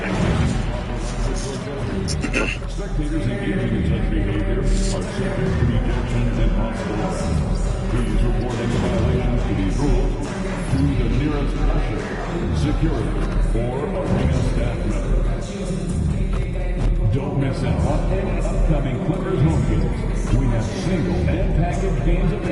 and using improper language or gestures. Spectators engaging in such behavior are subject to ejection and possible arrest. Please report any violations to these rules to the nearest usher, security, or arena staff member. Don't miss out on any upcoming Clippers home games. We have single and package games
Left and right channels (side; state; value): both; identical; correlation 1.00